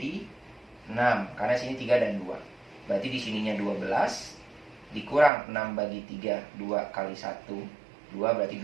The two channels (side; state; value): left; drops out; at 5.3 s